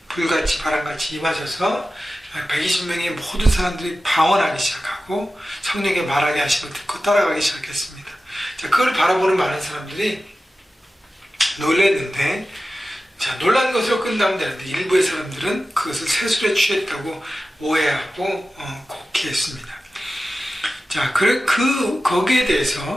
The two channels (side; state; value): both; normal; correlation 0.94